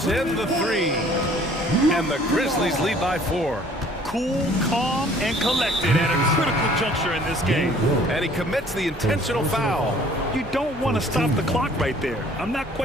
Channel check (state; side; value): normal; both; correlation 0.55